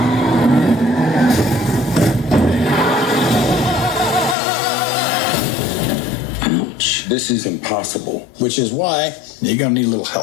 Ouch. This is impossible, which is why you're gonna need a little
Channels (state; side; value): drops out; right; at 4.4 s